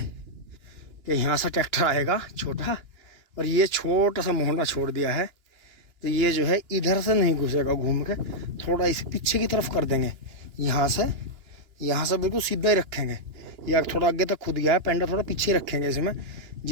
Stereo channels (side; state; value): left; late; 2.9 ms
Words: यहाँ से ट्रैक्टर आएगा छोटा, और ये छोटा सा मोहना छोड़ दिया है, तो ये जो है इधर से नहीं घुसेगा, घूम के थोड़ा इस पीछे की तरफ कर देंगे। यहाँ से बिल्कुल सीधा ही रखेंगे, या थोड़ा आगे तक खुद गया है, पेंडा थोड़ा पीछे रखेंगे इसमें,